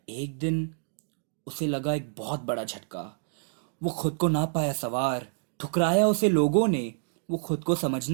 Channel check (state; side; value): silent; left; digital silence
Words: एक दिन उसे लगा एक बहुत बड़ा झटका। वो खुद को ना पाया सवार। ठुकराया उसे लोगों ने। वो खुद को